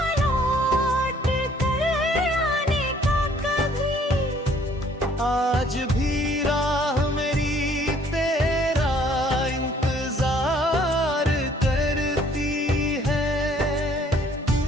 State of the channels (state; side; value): normal; both; correlation 0.60